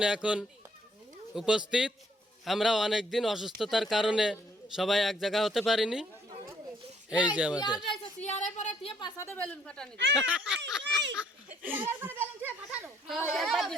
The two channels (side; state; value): both; normal; correlation 0.66